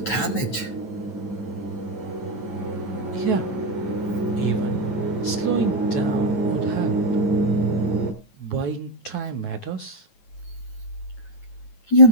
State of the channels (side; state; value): right; late; 9.2 ms